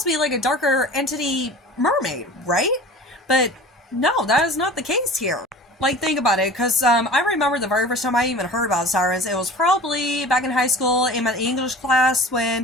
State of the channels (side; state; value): both; normal; correlation 0.40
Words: to be like a darker entity mermaid, right? But no, that is not the case here. Like, think about it, because I remember the very first time I even heard about sirens, it was probably back in high school in my English class